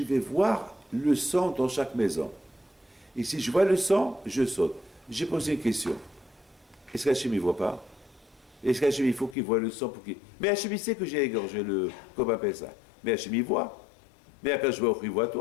vais voir le sang dans chaque maison. Et si je vois le sang, je saute. J'ai posé une question. Est-ce qu'Hachem, il ne voit pas? Est-ce qu'Hachem, il faut qu'il voit le sang pour qu'il... Mais Hachem, il sait que j'ai égorgé le... Comment on appelle ça? Mais Hachem, il voit. Mais Akadosh Baruch Hu, il voit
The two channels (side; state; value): right; drops out; at 9.3 s